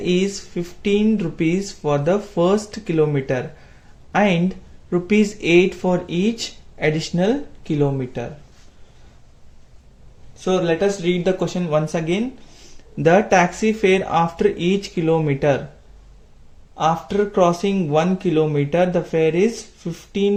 15 rupees for the first kilometer and rupees 8 for each additional kilometer. So let us read the question once again. The taxi fare after each kilometer. After crossing 1 kilometer, the fare is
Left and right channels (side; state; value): both; identical; correlation 1.00